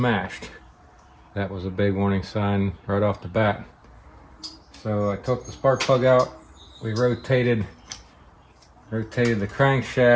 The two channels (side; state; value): both; identical; correlation 1.00